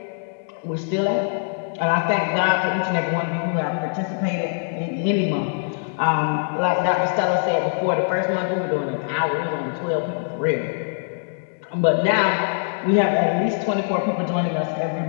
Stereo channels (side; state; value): right; silent; 63 dB below the other